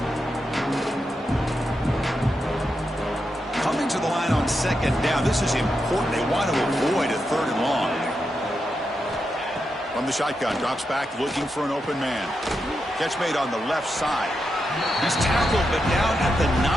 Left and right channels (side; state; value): both; normal; correlation 0.86